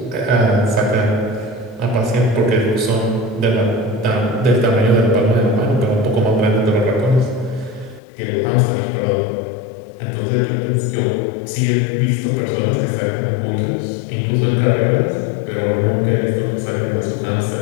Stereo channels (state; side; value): drops out; right; at 8.0 s